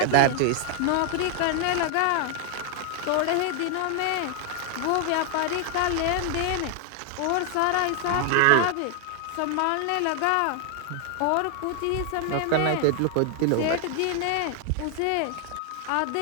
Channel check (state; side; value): different; both; correlation 0.00